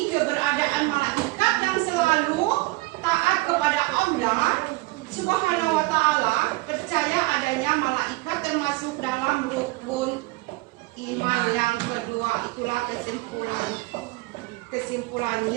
keberadaan malaikat yang selalu taat kepada Allah Subhanahu wa Ta'ala, percaya adanya malaikat termasuk dalam rukun iman yang kedua. Itulah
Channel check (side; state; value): left; quieter; 22.0 dB